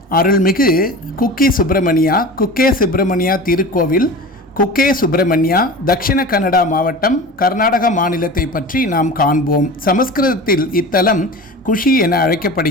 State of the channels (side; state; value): both; normal; correlation 0.33